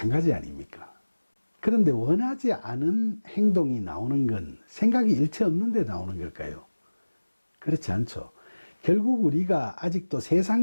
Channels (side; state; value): both; inverted; correlation -1.00